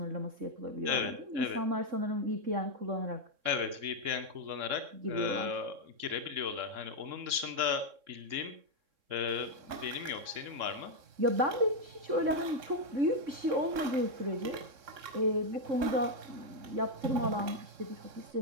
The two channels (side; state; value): left; late; 3.6 ms